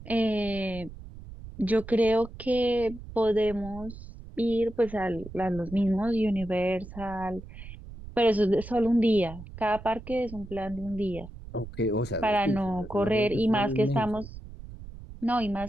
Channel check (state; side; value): noise; right; rumble, 14 dB below the sound